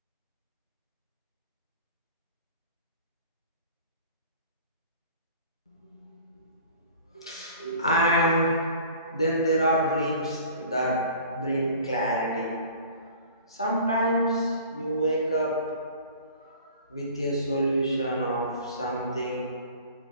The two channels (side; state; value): both; inverted; correlation -0.45